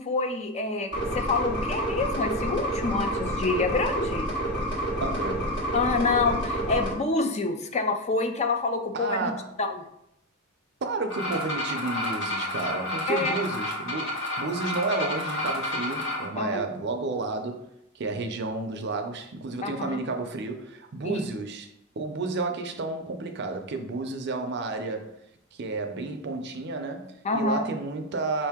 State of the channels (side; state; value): both; normal; correlation 0.09